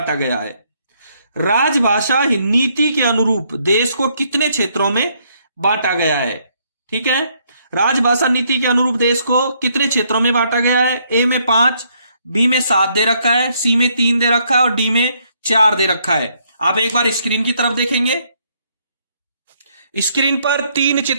गया है? राजभाषा नीति के अनुरूप देश को कितने क्षेत्रों में बांटा गया है? ठीक है, राजभाषा नीति के अनुरूप देश को कितने क्षेत्रों में बांटा गया है? ए में 5, बी में 7 दे रखा है, सी में 3 दे रखा है और डी में 4 दे रखा है। आप एक बार स्क्रीन की तरफ देखेंगे, स्क्रीन पर 3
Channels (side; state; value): both; inverted; correlation -0.71